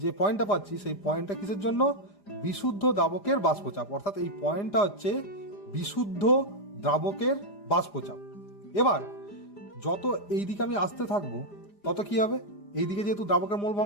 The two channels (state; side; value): late; right; 4.9 ms